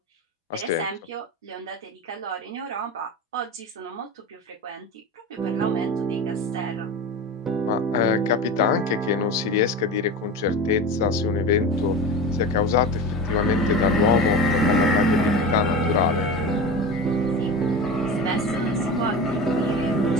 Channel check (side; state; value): both; normal; correlation 0.28